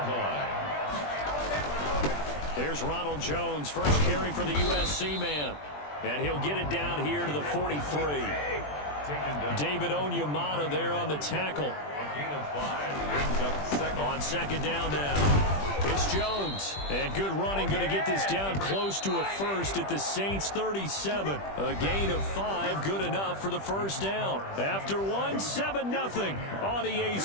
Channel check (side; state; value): right; late; 20 ms